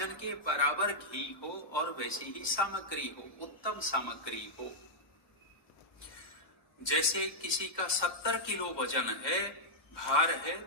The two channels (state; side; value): late; right; 1.2 ms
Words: के बराबर घी हो और वैसी ही सामग्री हो, उत्तम सामग्री हो। जैसे किसी का 70 किलो वजन है, भार है,